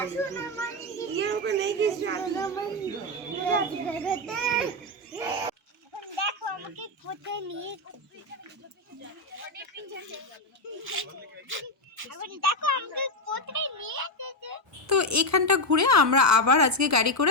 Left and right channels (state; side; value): normal; both; correlation 0.08